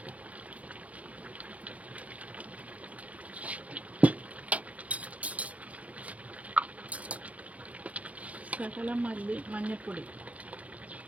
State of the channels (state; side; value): late; left; 0.067 ms